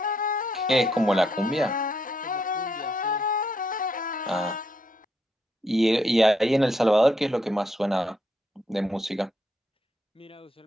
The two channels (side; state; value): both; normal; correlation 0.76